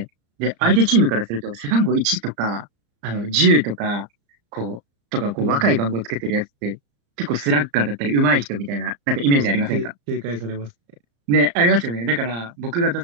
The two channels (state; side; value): late; left; 35 ms